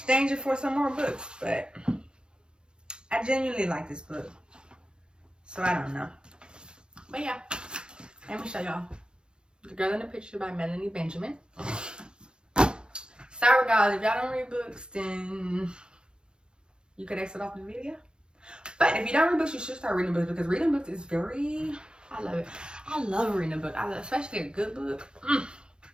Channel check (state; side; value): late; left; 0.049 ms